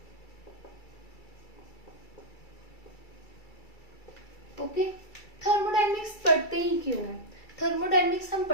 Okay, thermodynamics पढ़ते ही क्यों है? थर्मोडायनेमिक्स हम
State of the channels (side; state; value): right; late; 2.3 ms